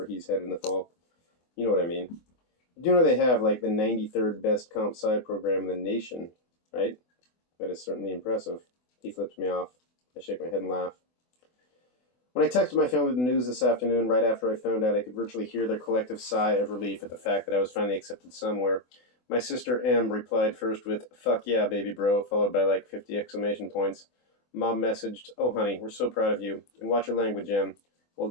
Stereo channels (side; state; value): right; late; 24 ms